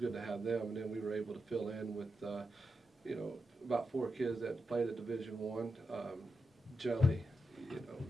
to have them. And then we were able to fill in with about 4 kids that played at Division I.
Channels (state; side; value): normal; both; correlation 0.87